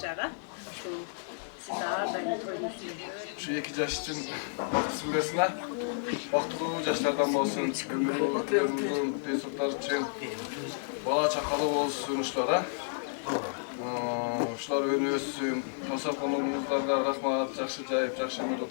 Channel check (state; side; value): silent; right; digital silence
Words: Şu siz ağırdan koymuşsunuz. Şu 2 yaş için sizgesine vaktılı yaşlardan olsun, ömrü uzun pesutlar için bala çakalı olsun uşlara. Uşlar önü össün, tasarkonumuzlarga rahmat, жақсы жайып, жақсы өмір